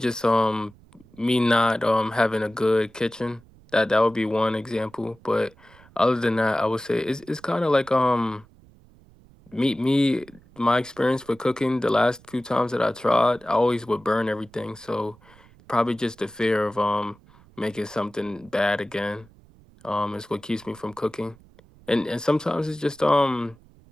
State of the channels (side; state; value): right; noise; rumble, 26 dB below the sound